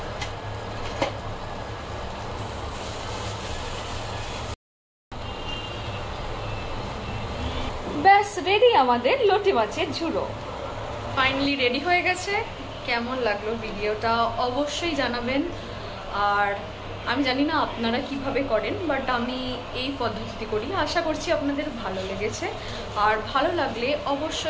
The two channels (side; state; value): both; identical; correlation 1.00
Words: ব্যাস রেডি আমাদের লোটে মাছের ঝুড়ো। ফাইনালি রেডি হয়ে গেছে। কেমন লাগলো ভিডিওটা অবশ্যই জানাবেন। আর আমি জানি না আপনারা কিভাবে করেন, বাট আমি এই পদ্ধতিতে করি, আশা করছি আপনাদের ভালো লেগেছে। আর ভালো লাগলে